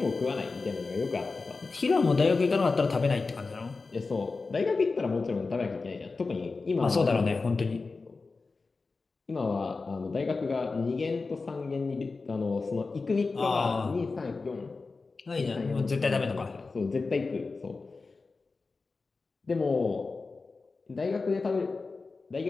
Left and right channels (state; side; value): quieter; right; 4.0 dB